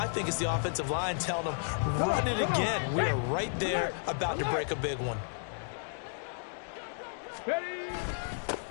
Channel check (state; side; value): silent; right; digital silence